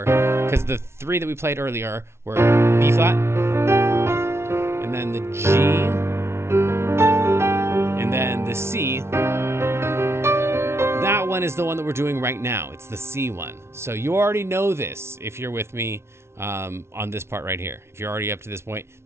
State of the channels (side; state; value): left; late; 0.12 ms